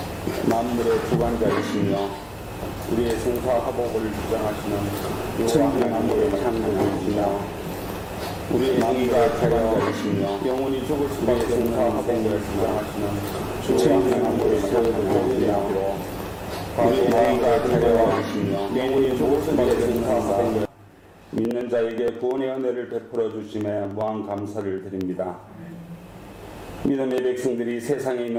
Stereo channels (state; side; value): identical; both; correlation 1.00